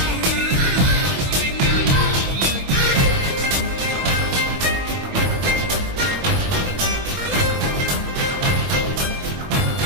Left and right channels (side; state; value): left; late; 22 ms